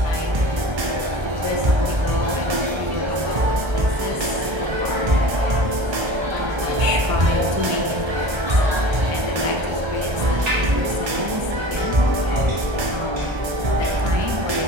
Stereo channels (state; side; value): late; left; 1.3 ms